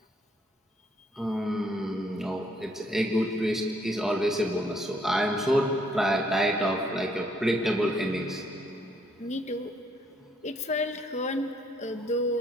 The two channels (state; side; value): normal; both; correlation 0.68